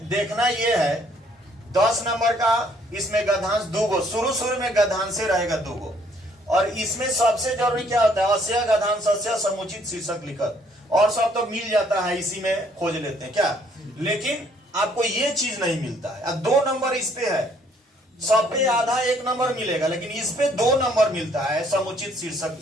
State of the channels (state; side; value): normal; both; correlation 0.64